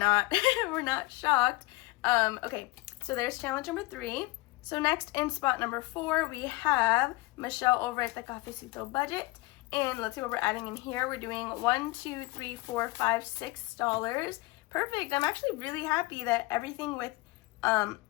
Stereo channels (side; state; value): right; quieter; 21.7 dB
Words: we're not shocked. Okay, so there's challenge number 3. So next, in spot number 4, we have Michelle over at the Cafecito Budget. And let's see what we're adding in here. We're doing $1, 2, 3, 4, 5, $6. Perfect. I'm actually really happy that everything with